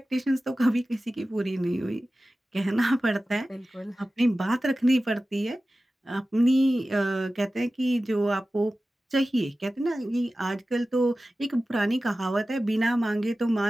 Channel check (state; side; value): normal; both; correlation 0.95